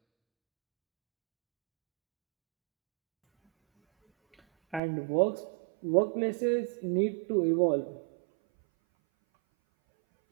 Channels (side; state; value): left; drops out; at 4.8 s